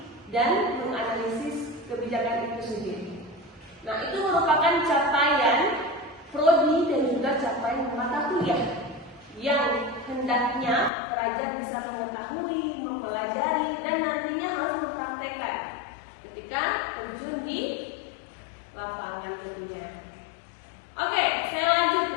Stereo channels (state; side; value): drops out; right; at 10.9 s